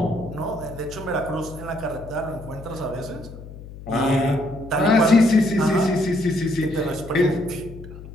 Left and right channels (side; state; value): left; noise; hum, 15 dB below the sound